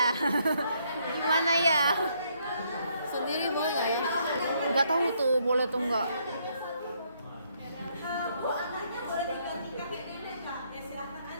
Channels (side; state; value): both; inverted; correlation -0.71